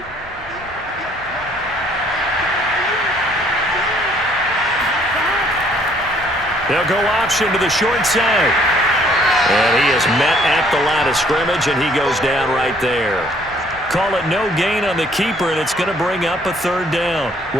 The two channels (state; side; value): normal; both; correlation 0.62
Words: They'll go option to the short side. And he is met at the line of scrimmage, and he goes down right there. Call it no gain on the keeper, and it's going to bring up a 3rd down.